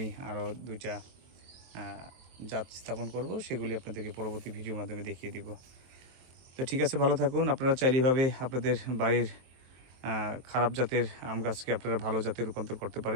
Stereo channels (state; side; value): late; left; 23 ms